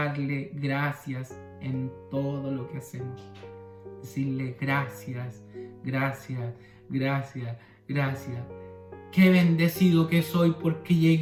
gracias en todo lo que hacemos. Decirle gracias, gracias, gracias, gracias. Qué bendecido que soy porque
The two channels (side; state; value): both; identical; correlation 1.00